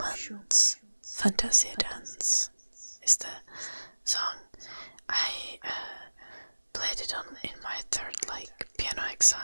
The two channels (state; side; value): inverted; both; correlation -1.00